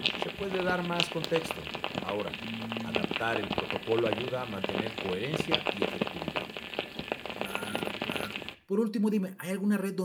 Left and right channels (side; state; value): both; identical; correlation 1.00